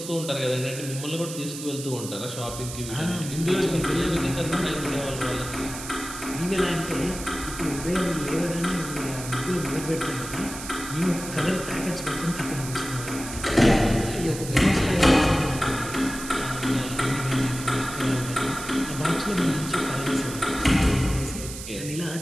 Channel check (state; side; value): noise; right; hiss, 10 dB below the sound